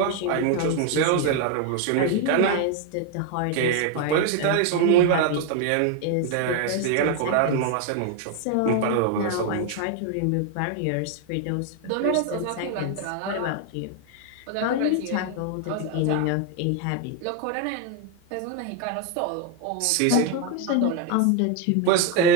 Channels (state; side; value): different; both; correlation 0.01